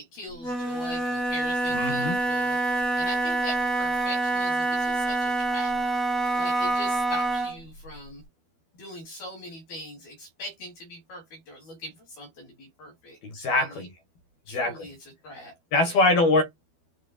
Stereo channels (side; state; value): right; late; 12 ms